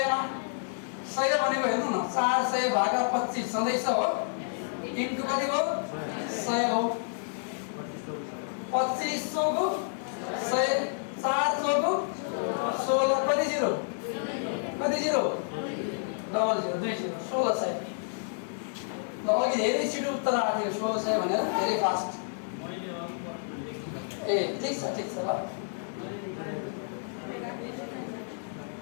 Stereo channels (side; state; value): right; silent; 58 dB below the other